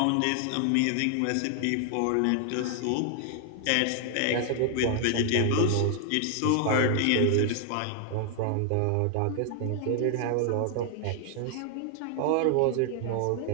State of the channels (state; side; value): different; both; correlation 0.00